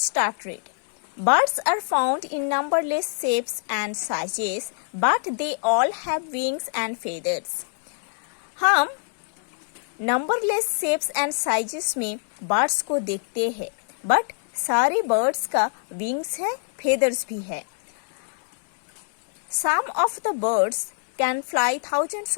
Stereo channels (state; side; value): silent; right; 62 dB below the other